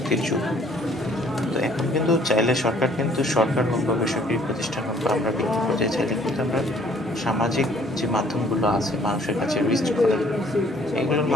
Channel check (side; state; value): both; normal; correlation 0.59